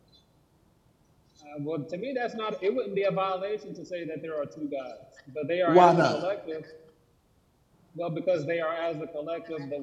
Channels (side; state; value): both; identical; correlation 1.00